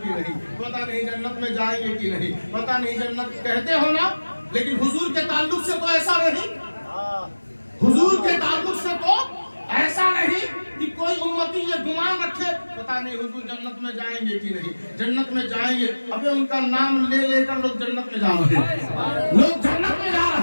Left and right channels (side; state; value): both; inverted; correlation -1.00